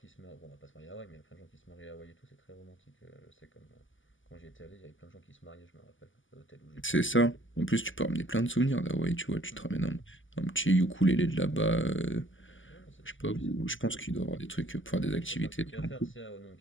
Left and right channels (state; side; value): late; right; 0.57 ms